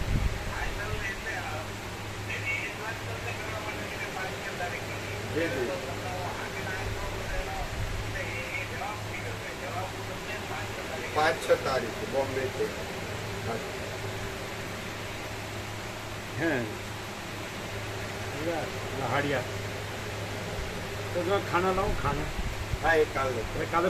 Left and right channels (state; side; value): identical; both; correlation 1.00